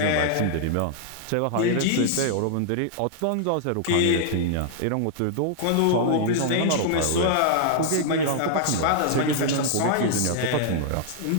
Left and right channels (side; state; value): both; different; correlation -0.01